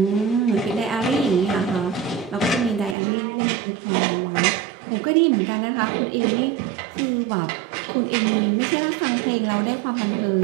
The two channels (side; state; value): left; drops out; at 3.0 s